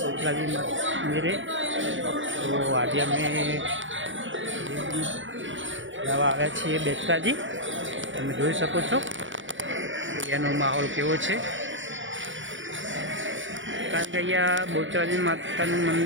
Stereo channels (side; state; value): left; late; 0.56 ms